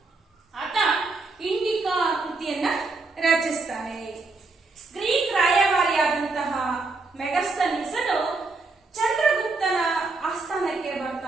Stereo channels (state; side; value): quieter; left; 3.6 dB